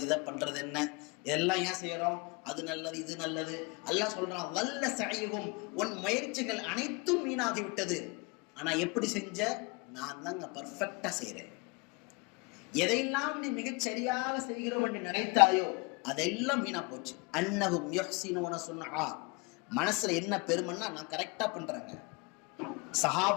இதை பண்றது என்ன, இதெல்லாம் ஏன் செய்யறோம்? அது நல்லது, இது நல்லது. அல்லாஹ் சொல்றான், வல்ல சஐஹும், உன் முயற்சிகள் அனைத்தும் வீணாகி விட்டது. ஆனா எப்படி செஞ்ச? நான் தாங்க பர்ஃபெக்டா செய்யறேன். எதையெல்லாம் நீ மிகச் சரியாக செய்கிறோம் என்று நினைத்தாயோ அதெல்லாம் வீணா போச்சு. அன்னஹும் யுஹ்ஸினூன சுன்ஆ, மனசுல என்ன பெருமைன்னா நான் கரெக்டா பண்றேங்க.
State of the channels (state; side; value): quieter; right; 29.5 dB